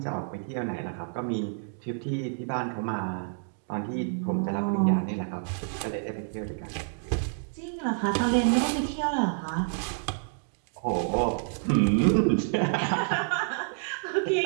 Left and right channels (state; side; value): silent; left; digital silence